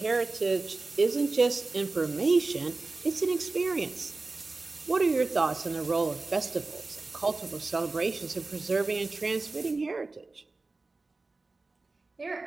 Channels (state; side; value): quieter; left; 3.5 dB